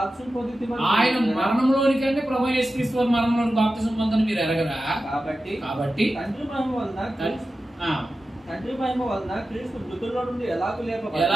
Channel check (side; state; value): both; normal; correlation 0.93